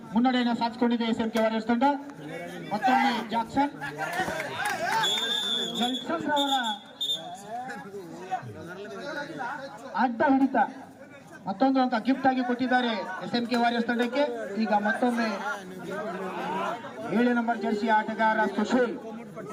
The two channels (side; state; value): both; identical; correlation 1.00